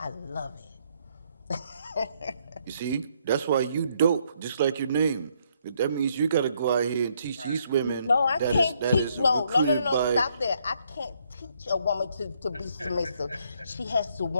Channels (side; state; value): both; inverted; correlation -0.71